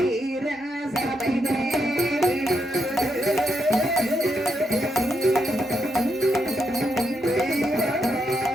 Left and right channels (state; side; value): normal; both; correlation 0.81